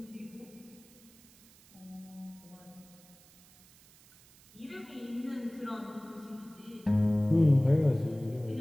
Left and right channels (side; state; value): right; noise; hiss, 25 dB below the sound